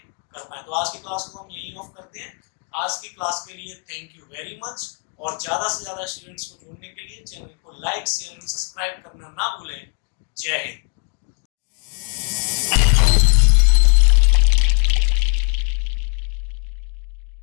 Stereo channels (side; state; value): right; quieter; 36.9 dB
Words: कर पाए। तो आज की क्लास को हम यही ऑफ करते हैं। आज की क्लास के लिए थैंक यू वेरी मच, और ज्यादा से ज्यादा स्टूडेंट्स को जोड़ने के लिए चैनल को लाइक, शेयर एंड सब्सक्राइब करना ना भूलें। जय हिंद।